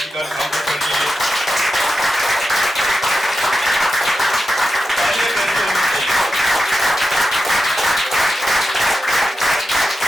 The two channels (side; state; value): both; normal; correlation 0.90